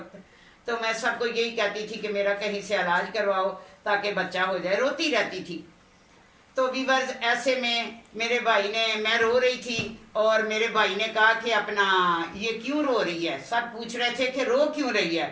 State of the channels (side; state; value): both; identical; correlation 1.00